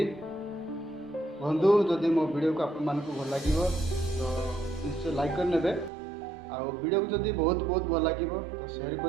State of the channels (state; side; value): drops out; left; at 5.9 s